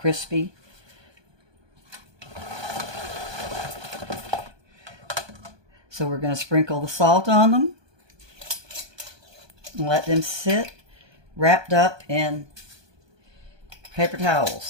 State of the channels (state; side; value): late; left; 1.2 ms